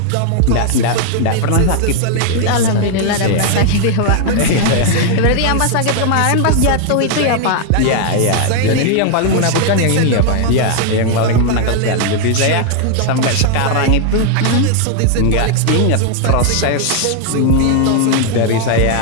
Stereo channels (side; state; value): both; different; correlation 0.00